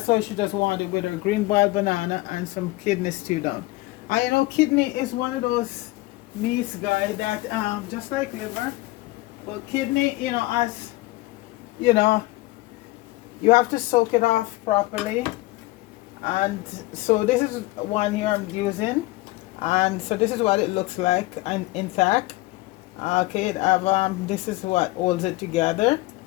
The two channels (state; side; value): quieter; right; 20.2 dB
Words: all she just wanted, with her green boiled banana and some kidney stew down. And you know, kidney is one of those meats, guys, that just like liver, but kidney, as you know you have to soak it off properly. And so this is one here I'm using, and so this is what it looks like and intact. Okay, this is what holds it together.